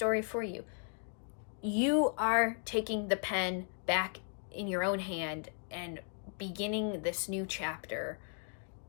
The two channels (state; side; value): silent; right; 54 dB below the other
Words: for you. You are taking the pen back in your own hand and beginning this new chapter